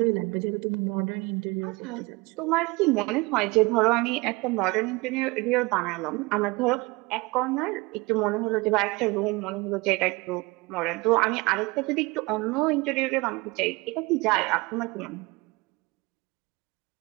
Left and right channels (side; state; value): left; quieter; 24.3 dB